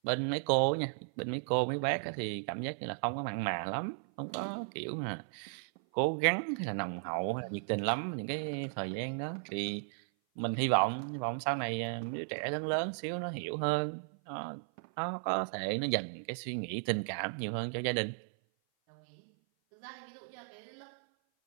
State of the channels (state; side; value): silent; left; 54 dB below the other